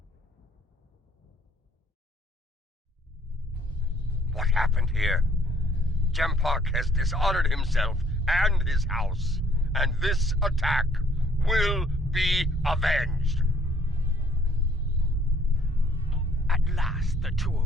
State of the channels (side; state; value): both; normal; correlation 0.63